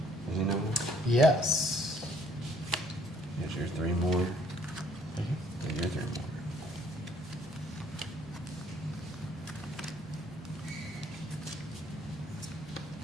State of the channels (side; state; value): both; normal; correlation 0.62